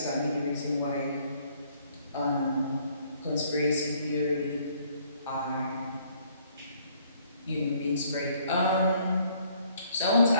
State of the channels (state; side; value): inverted; both; correlation -0.63